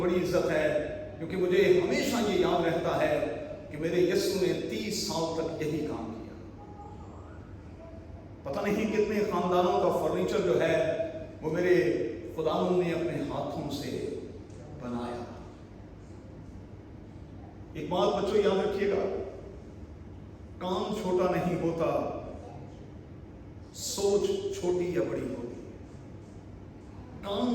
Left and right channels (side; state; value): both; identical; correlation 1.00